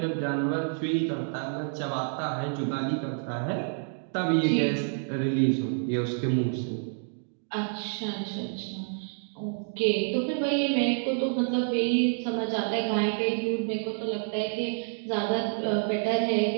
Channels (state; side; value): silent; left; 59 dB below the other